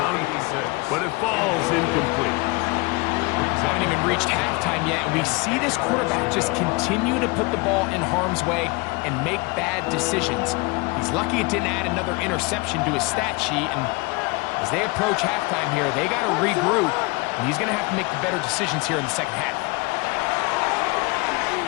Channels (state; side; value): quieter; right; 26.6 dB